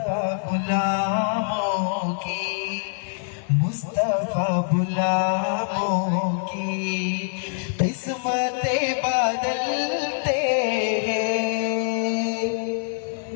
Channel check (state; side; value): silent; right; digital silence